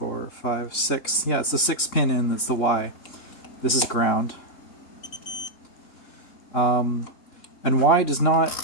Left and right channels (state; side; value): late; right; 3.7 ms